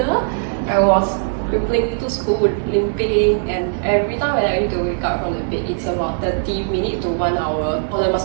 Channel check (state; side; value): silent; left; 57 dB below the other